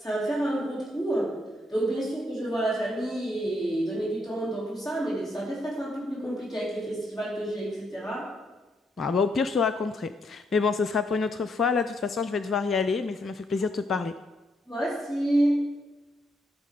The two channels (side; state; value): both; normal; correlation 0.76